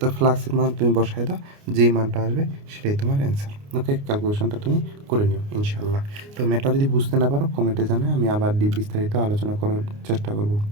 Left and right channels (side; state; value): left; late; 29 ms